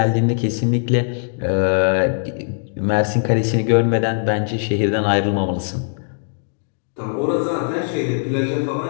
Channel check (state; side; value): silent; right; digital silence